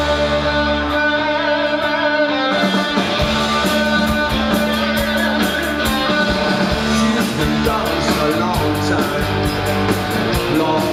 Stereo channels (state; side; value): identical; both; correlation 1.00